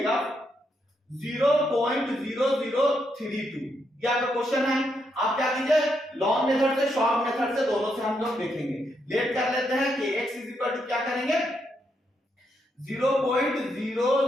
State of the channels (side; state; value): both; normal; correlation 0.79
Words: 0.0032 ये आपका क्वेश्चन है। आप क्या कीजिए लॉन्ग मेथड से शॉर्ट मेथड से दोनों से हम लोग देखेंगे। लेट कर लेते हैं कि x क्या करेंगे